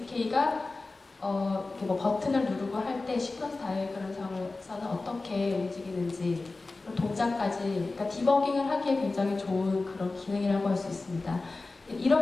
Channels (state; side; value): quieter; right; 3.5 dB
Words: 이렇게 뭐 버튼을 누르고 할 때 시퀀스 다이어그램상에서는 어떻게 움직이는지 동작까지 그러니까 디버깅을 하기에 굉장히 좋은 그런 기능이라고 할 수 있습니다.